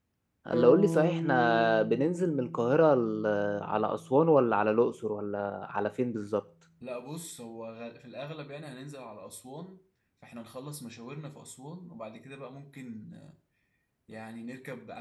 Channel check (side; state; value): both; identical; correlation 1.00